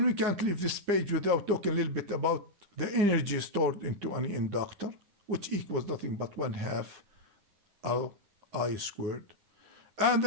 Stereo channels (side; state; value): left; late; 10 ms